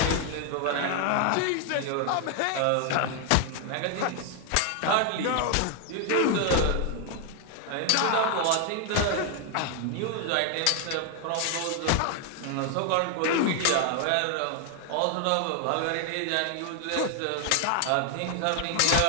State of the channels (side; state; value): both; different; correlation 0.00